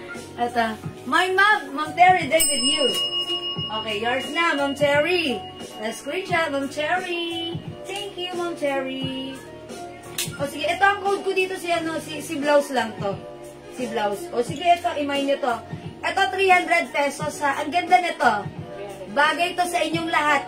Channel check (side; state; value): both; identical; correlation 1.00